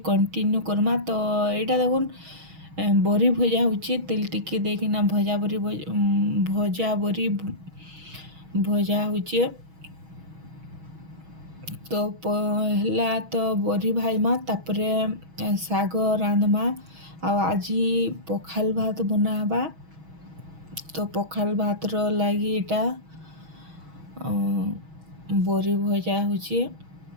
କଣ୍ଟିନ୍ୟୁ କର୍ମା। ତ ଏଇଟା ଦେଖୁନ୍ ବରି ଭଜା ହଉଛେ, ତେଲ ଟିକେ ଦେଇକିନା ଭଜା ବରି ଭଜା ହଉଛେ। ତ ପହଲା ତ ବରି ଭାଜମା, ତାପରେ ଶାଗ ରାନ୍ଧମା। ଆଉ ଆଜି ପଖାଲ ଭାତ ବନା ହେବା। ତ ପଖାଲ ଭାତର ଲାଗି ଏଇଟା ବରି ଭଜା ହଉଛେ।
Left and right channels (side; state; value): left; late; 6.2 ms